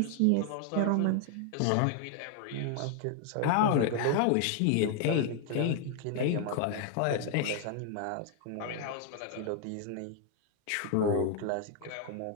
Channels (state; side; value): different; both; correlation 0.00